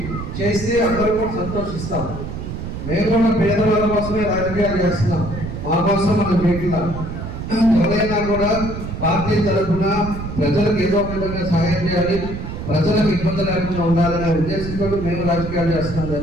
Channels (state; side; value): noise; right; rumble, 7 dB below the sound